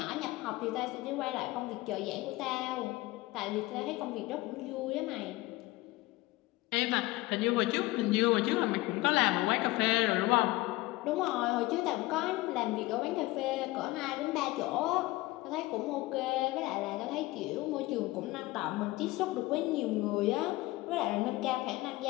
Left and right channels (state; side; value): quieter; right; 19.7 dB